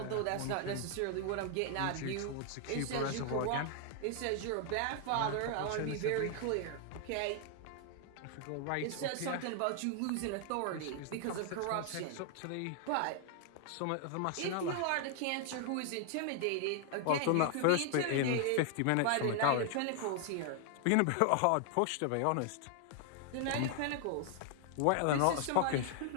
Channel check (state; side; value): different; both; correlation 0.00